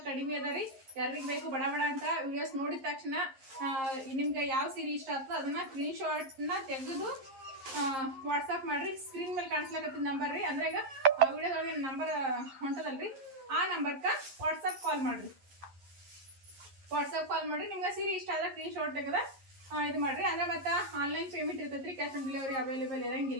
ಕಡಿಮೆ ಅದ ರೀ. ಯಾರಿಗೆ ಬೇಕು ಬಡ ಬಡ ಅಂತ ವಿಡಿಯೋಸ್ ನೋಡಿದ ತಕ್ಷಣ ನಿಮ್ಗೆ ಯಾವ ಸೀರೆ ಇಷ್ಟ ಆಗ್ತದೆ ಅದನ್ನ ಸ್ಕ್ರೀನ್ ಶಾಟ್ನ ತೆಗೆದು ವಾಟ್ಸಪ್ ಮಾಡ್ರಿ. ಸ್ಕ್ರೀನ್ ಮೇಲೆ ಕಾಣಿಸ್ಲಾಕತ್ತಿದ ನಂಬರ್ ರೀ. ಅಂದ್ರೆ ಈಗ ಆ ವಿಡಿಯೋದೊಳಗೆ ನಂಬರ್ ಹೊಂಟದಲ್ರಿ, ಆ ನಂಬರ್ಗೆ ವಾಟ್ಸಪ್ ಕಾಲ್ ಮಾಡ್ರಿ. ನಿಮ್ಗೆ ಸೀರೆ ಇಷ್ಟ ಆದ್ರೆ ಸ್ಕ್ರೀನ್ ಶಾಟ್ ತೆಗೆದ ಇದು ಮಾಡ್ರಿ. ಅಂದ್ರೆ ಮತ್ತೆ ಆನ್ಲೈನ್ ಪೇಮೆಂಟ್ ಇರ್ತೈತ್ರಿ. ಕ್ಯಾಶ್ ಆನ್ ಡೆಲಿವರಿ ಅವೈಲೇಬಲ್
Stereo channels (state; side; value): late; left; 11 ms